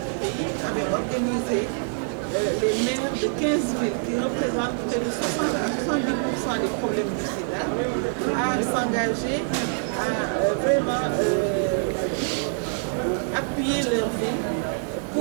pays, avait organisé les maires de 15 villes qui représentent près de 60 à 70% des problèmes du sida à s'engager à vraiment appuyer leur ville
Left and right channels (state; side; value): silent; left; 62 dB below the other